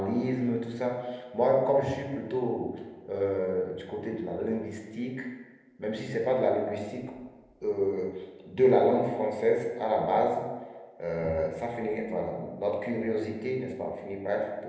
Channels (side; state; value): both; identical; correlation 1.00